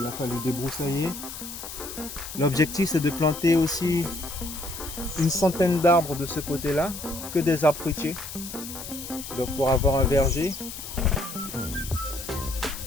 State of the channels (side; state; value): left; noise; hiss, 10 dB below the sound